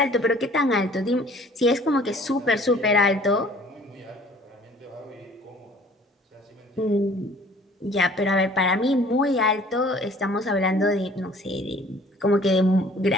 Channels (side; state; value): both; normal; correlation 0.53